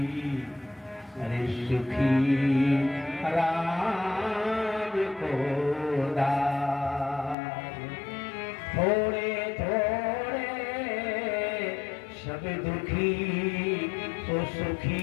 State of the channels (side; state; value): right; drops out; at 7.4 s